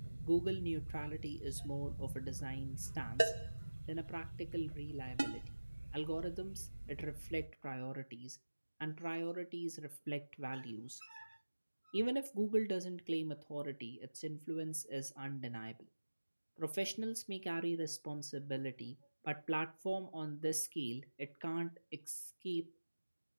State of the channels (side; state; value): both; inverted; correlation -1.00